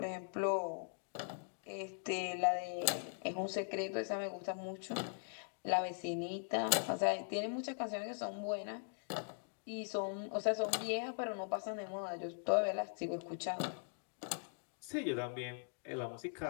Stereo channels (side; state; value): right; silent; digital silence